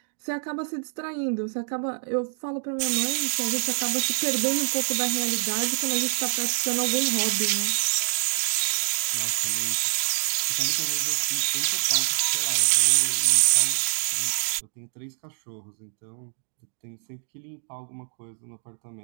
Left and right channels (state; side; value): silent; left; digital silence